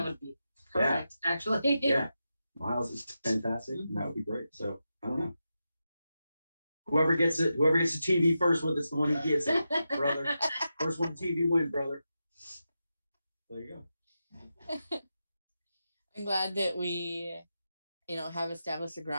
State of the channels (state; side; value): inverted; both; correlation -0.89